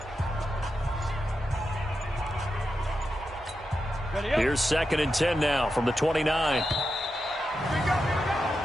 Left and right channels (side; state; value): both; normal; correlation 0.88